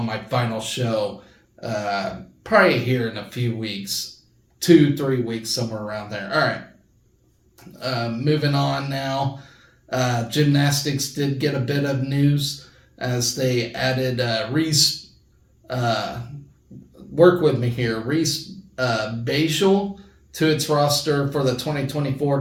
my final show, probably here in a few weeks, 2-3 weeks, somewhere around there. All right, moving on now. Gymnastics did get a bit of news as they added Reese, work with me here, Reese Bashel to its roster for the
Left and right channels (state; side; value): identical; both; correlation 1.00